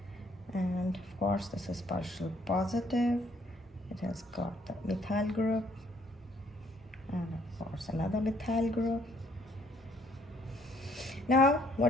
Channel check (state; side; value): normal; both; correlation 0.64